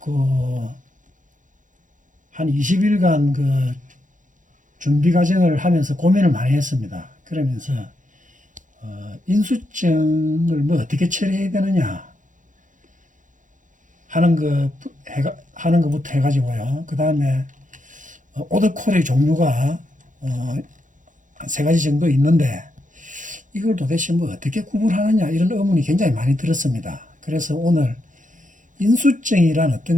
한 20일간 준비 과정을 하면서 고민을 많이 했습니다. 그러면서 인수증을 어떻게 처리해야 되느냐 하는 것부터 해가지고요. 그 다음에 오더콜의 종류가 한 세 가지 정도 있는데 이걸 도대체 어떻게 구분하느냐 이런 의문이 굉장히 많이 들었습니다. 그래서 오늘 인수증이란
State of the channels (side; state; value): left; late; 0.37 ms